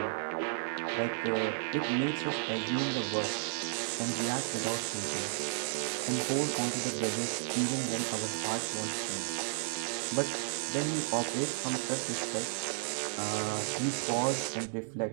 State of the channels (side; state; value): left; silent; digital silence